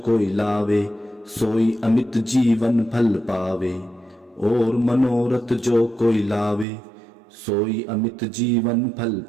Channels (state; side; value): drops out; left; at 6.7 s